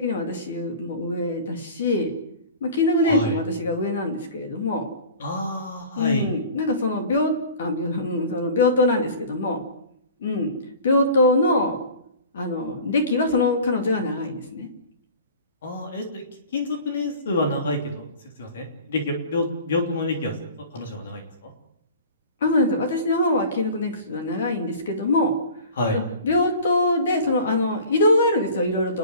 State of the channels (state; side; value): inverted; both; correlation -0.42